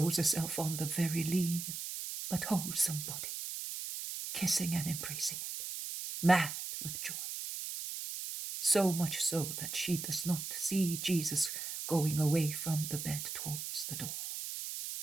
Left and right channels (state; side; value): noise; right; hiss, 6 dB below the sound